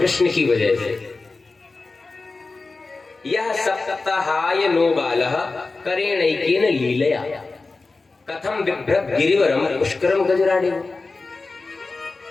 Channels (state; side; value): quieter; right; 3.7 dB